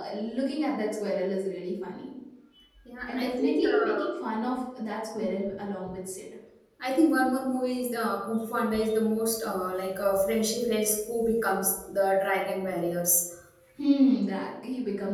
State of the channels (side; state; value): both; identical; correlation 1.00